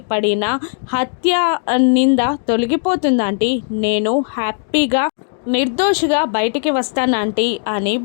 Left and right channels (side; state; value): right; silent; digital silence